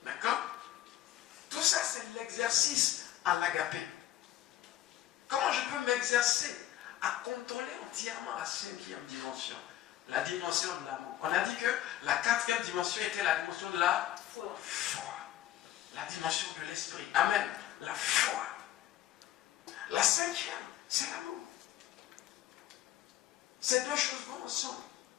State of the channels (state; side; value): quieter; right; 13.5 dB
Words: D'accord? Tout ça, c'est l'exercice à l'agapé. Comment je peux m'exercer à contrôler entièrement la 5e dimension, la dimension de l'amour? On a dit que la 4e dimension était la dimension de la foi. La dimension de l'esprit. Amen. La foi. La 5e, c'est l'amour. Ces deux choses vont ensemble.